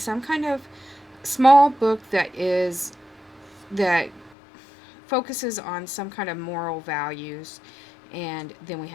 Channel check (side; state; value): right; drops out; at 4.4 s